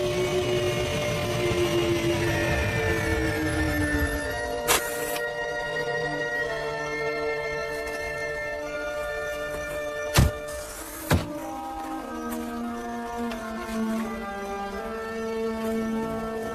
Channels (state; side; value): identical; both; correlation 1.00